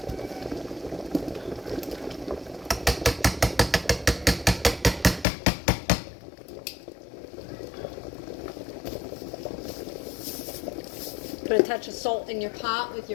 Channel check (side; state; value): right; drops out; at 5.2 s